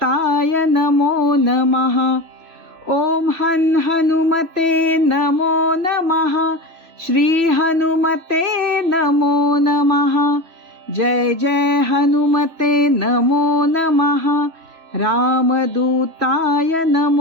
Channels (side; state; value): left; late; 3.0 ms